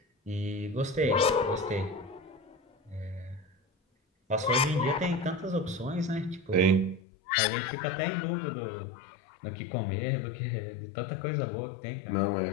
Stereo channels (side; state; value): right; drops out; at 7.0 s